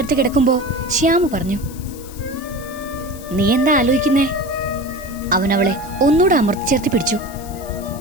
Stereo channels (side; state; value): left; noise; hiss, 18 dB below the sound